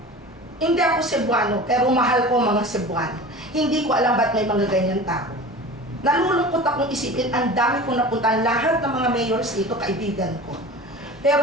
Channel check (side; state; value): both; normal; correlation 0.36